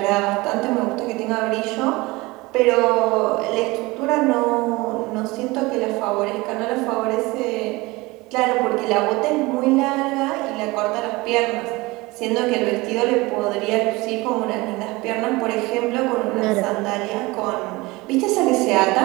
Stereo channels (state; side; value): quieter; left; 22.3 dB